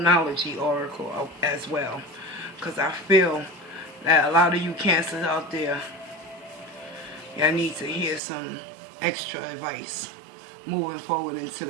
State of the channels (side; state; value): left; drops out; at 8.2 s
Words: oracle as well, because I feel that a lot of you Cancers out there, y'all need to hear some extra advice moving forward into